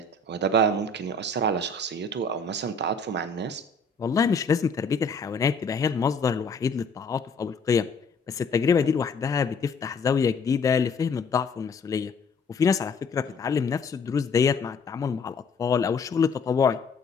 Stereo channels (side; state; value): right; quieter; 3.8 dB